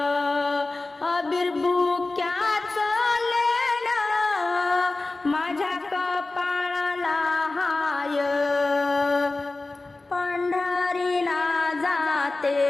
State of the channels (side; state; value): right; quieter; 3.2 dB